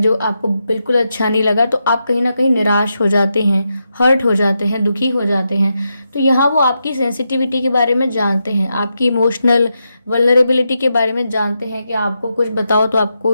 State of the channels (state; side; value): inverted; both; correlation -0.86